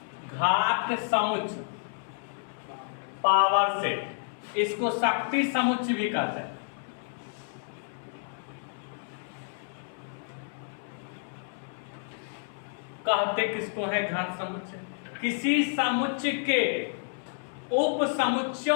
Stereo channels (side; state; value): right; silent; 58 dB below the other